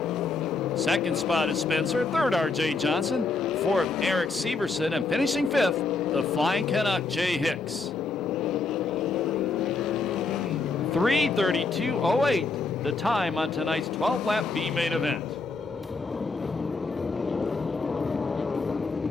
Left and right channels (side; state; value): right; quieter; 4.0 dB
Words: Second spot is Spencer. Third, R.J. Johnson. Fourth, Eric Severson. And finishing 5th, the Flying Canuck, Jay Hicks. 3:32:08, the time on tonight's 12-lap B main event.